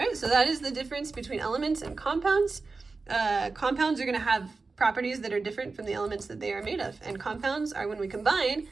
right, so that is the difference between elements and compounds. compounds are going to have properties that are different from the elements that they are made of. And compounds are when we combine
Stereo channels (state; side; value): quieter; left; 4.0 dB